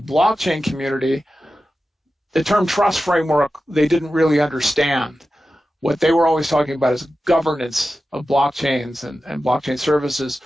blockchain community, the term trust framework, they didn't really understand. What they were always talking about is governance of blockchains and blockchain services.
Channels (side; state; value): both; normal; correlation 0.93